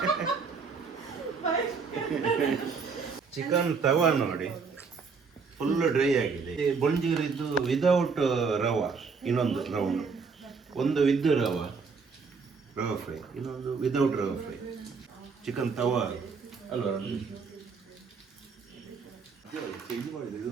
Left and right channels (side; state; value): left; quieter; 5.1 dB